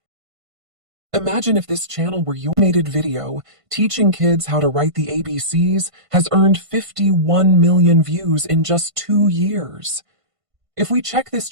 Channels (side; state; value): left; late; 1.5 ms